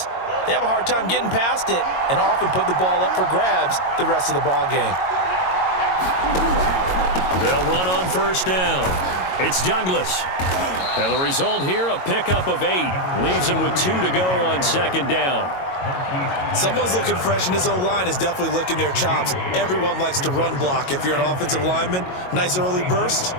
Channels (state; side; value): late; right; 22 ms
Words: they have a hard time getting past it and often put the ball up for grabs the rest of the ball game. They'll run on first down. It's Douglas. And the result here, a pickup of 8. Leaves him with 2 to go on 2nd down. Someone's looking fresh, and his O-line is definitely licking their chops. Everyone likes to run block. If you're an offensive lineman, nice early burst,